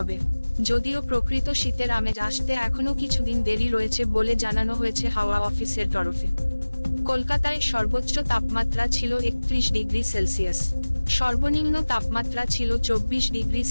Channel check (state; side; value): inverted; both; correlation -1.00